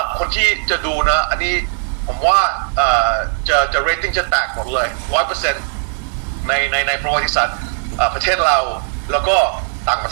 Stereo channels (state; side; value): silent; left; digital silence